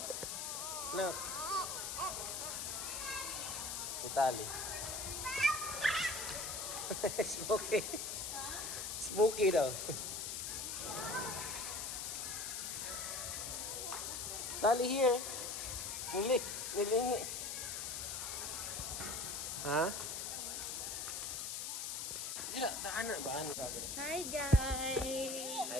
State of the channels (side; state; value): left; noise; hiss, 3 dB below the sound